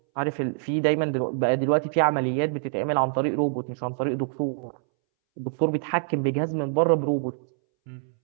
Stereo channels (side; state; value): left; silent; 61 dB below the other